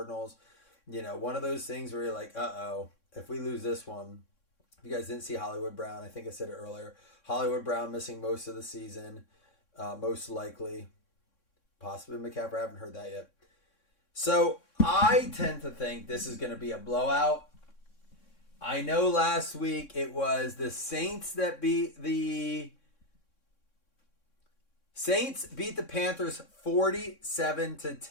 One of those things where you're like, uh-oh, if we lose this one. If you guys didn't see Hollywood Brown, I think I said it earlier. Hollywood Brown missing most of the season, most likely. Possibly McCaffrey. I haven't heard that yet. So I tend to think this is going to be a blowout. I know last week it was the Saints that beat the Panthers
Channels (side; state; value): right; late; 3.6 ms